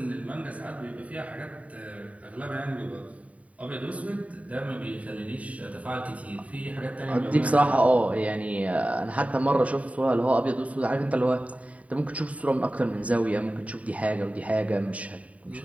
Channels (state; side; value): late; left; 0.068 ms